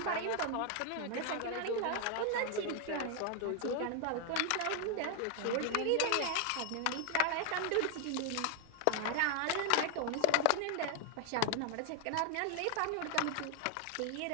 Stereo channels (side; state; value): both; different; correlation 0.00